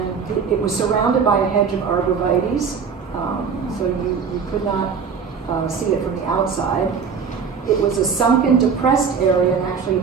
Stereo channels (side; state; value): left; quieter; 6.1 dB